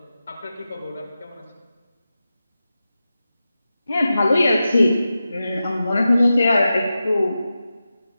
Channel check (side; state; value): both; inverted; correlation -0.92